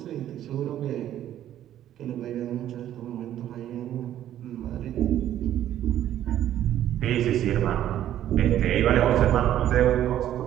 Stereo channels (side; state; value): left; quieter; 11.8 dB